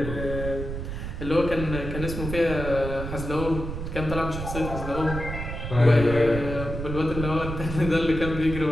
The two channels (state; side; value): noise; right; rumble, 6 dB below the sound